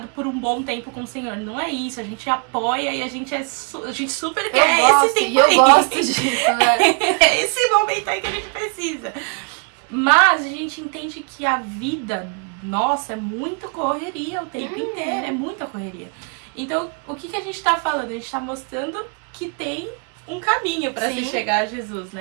por um bom tempo com o Senhor. Não é isso, a gente apoia e a gente super quer esse tempo aí. Eu gosto disso, né? É esse momento aí que a gente precisa. Mas a gente entende que a vida nossa é muita correria o tempo inteiro, é muita correria. Então, o que a gente tá falando? A gente tá mostrando que tem um caminho pra se chegar a Jesus,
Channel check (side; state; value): left; quieter; 37.8 dB